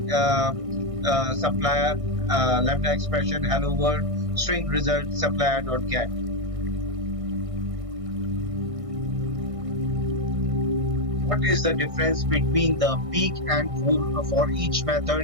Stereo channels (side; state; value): left; late; 1.6 ms